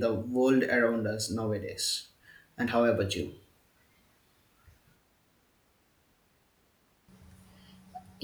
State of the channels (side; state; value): both; identical; correlation 1.00